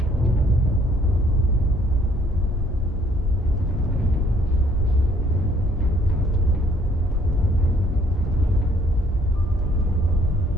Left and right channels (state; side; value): normal; both; correlation 0.63